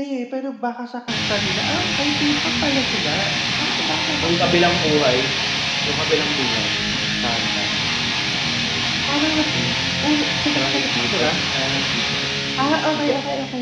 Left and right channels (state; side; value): identical; both; correlation 1.00